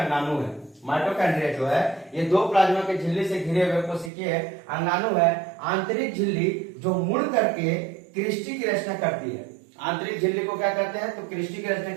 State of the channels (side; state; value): left; drops out; at 4.1 s